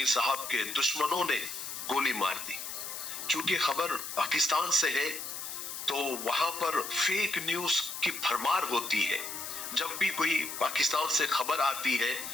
صاحب کے دشمنوں نے گولی مار دی. چونکہ خبر پاکستان سے ہے تو وہاں پر فیک نیوز کی بھرمار ہوتی ہے. جب بھی کوئی پاکستان سے خبر آتی ہے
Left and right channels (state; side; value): noise; left; hiss, 7 dB below the sound